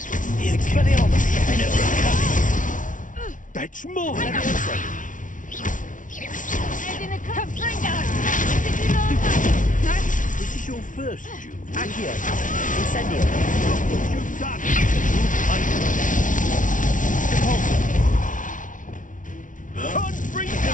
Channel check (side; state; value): right; late; 0.38 ms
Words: Expelliarmus! That's more! Levioso! This is your first duel. Accio! Incendio! What you've done! Compulso!